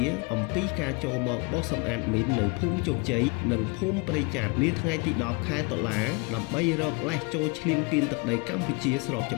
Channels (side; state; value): right; quieter; 29.1 dB